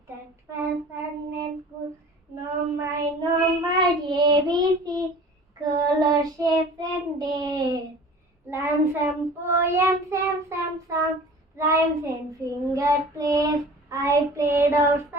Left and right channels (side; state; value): both; normal; correlation 0.43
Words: that was fun and cool. No my ABC, color, shapes and days. Learn some poems and some songs, rhymes and finger plays. I played